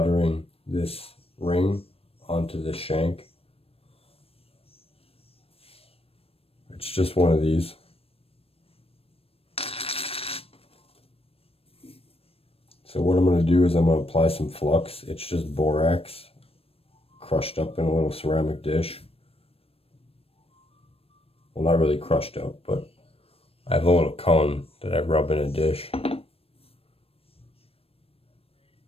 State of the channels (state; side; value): late; right; 0.28 ms